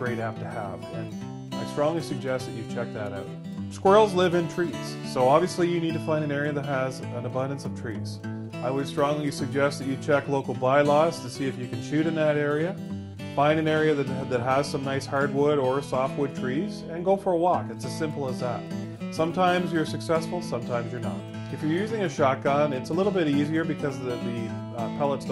app to have, and I strongly suggest that you check that out. Squirrels live in trees, so obviously you need to find an area that has an abundance of trees. I would strongly suggest that you check local bylaws to see if you can shoot in that area. Find an area that has some nice hardwood or softwood trees, and go for a walk. It's as simple as that. Sometimes you're successful, sometimes you're not. If you're using a shotgun, it's a little bit easier because the pellets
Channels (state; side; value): identical; both; correlation 1.00